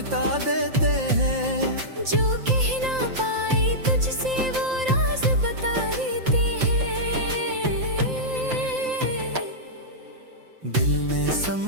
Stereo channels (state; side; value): late; left; 5.7 ms